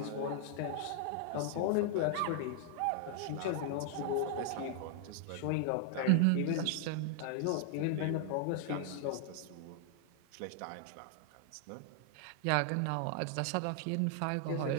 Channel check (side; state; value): both; different; correlation 0.00